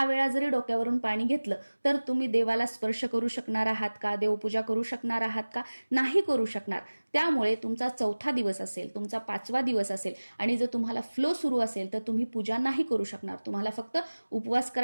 वेळा जरी डोक्यावरून पाणी घेतलं तर तुम्ही देवाला स्पर्श करू शकणार आहात का? देवपूजा करू शकणार आहात का? नाही करू शकणार. त्यामुळे तुमचा चौथा दिवस असेल, तुमचा 5वा दिवस असेल आणि जर तुम्हाला फ्लो सुरू असेल तर तुम्ही पूजा नाही करू शकणार. तुम्हाला फक्त उपवास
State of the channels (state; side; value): inverted; both; correlation -1.00